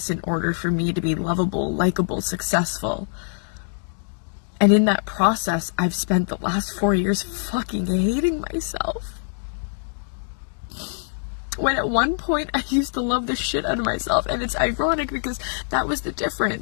in order for me to be lovable, likable, successful. And in that process, I've spent the last 4 years fucking hating myself. When at one point I used to love the shit out of myself, and it's ironic because that was the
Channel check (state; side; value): silent; right; digital silence